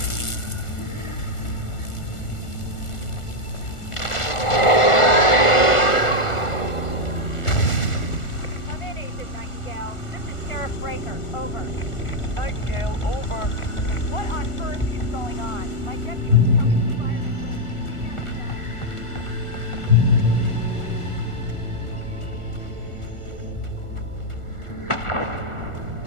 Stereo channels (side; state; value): right; late; 1.4 ms